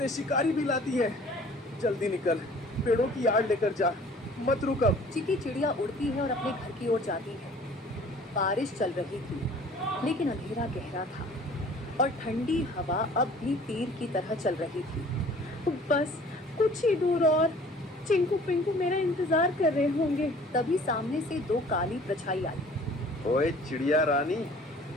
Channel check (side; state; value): both; normal; correlation 0.51